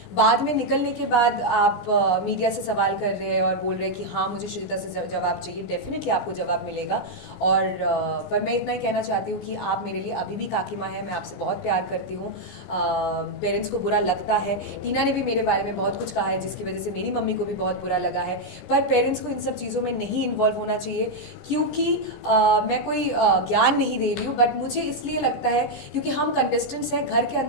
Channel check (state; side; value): late; right; 17 ms